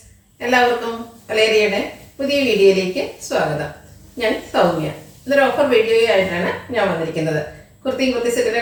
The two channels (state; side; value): identical; both; correlation 1.00